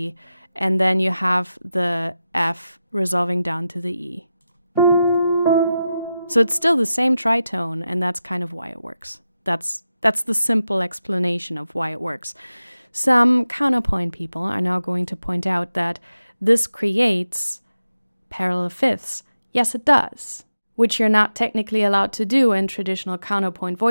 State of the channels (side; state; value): both; inverted; correlation -0.92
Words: and then you have the F resolving down to the E. So it's still the same tritone, and that's kind of why it works. That's the simple explanation of why it works. Some counterpoint people are now going to point out that this creates parallel fifths. Yes, it does, which you're not technically allowed to do in traditional counterpoint